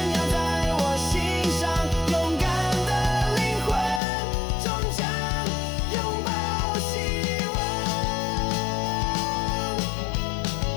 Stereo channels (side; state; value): right; drops out; at 4.0 s